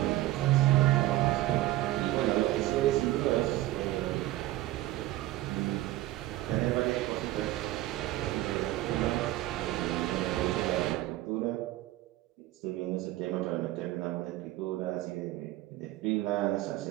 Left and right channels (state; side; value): quieter; left; 16.3 dB